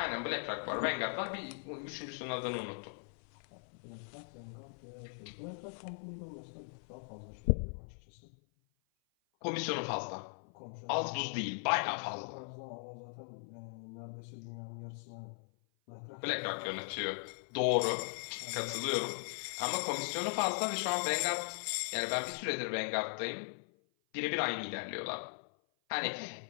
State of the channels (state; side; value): silent; right; 52 dB below the other